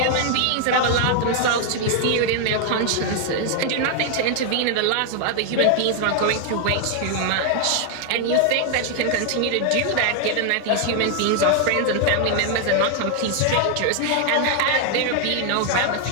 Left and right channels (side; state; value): both; different; correlation 0.00